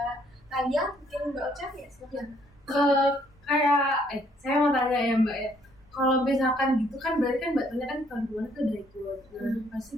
Talia, mungkin Mbak Ocha ya silakan. Saya mau tanya ya Mbak ya, kalau misalkan gitu kan berarti kan Mbak Talia kan tahun kemarin tuh udah ikut, pasti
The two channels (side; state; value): both; normal; correlation 0.66